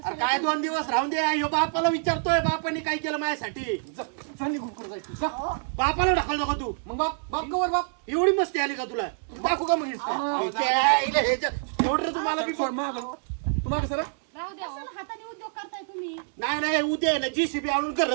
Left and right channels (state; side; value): silent; left; digital silence